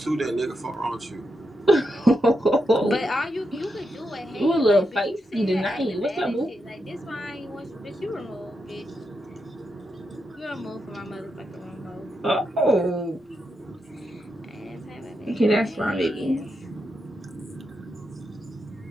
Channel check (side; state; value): both; normal; correlation 0.85